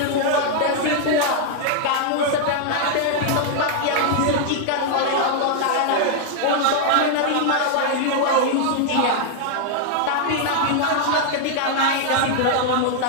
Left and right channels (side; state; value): both; different; correlation 0.00